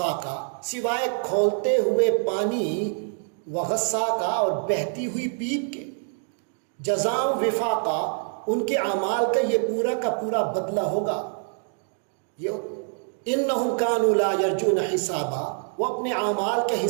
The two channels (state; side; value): silent; left; 61 dB below the other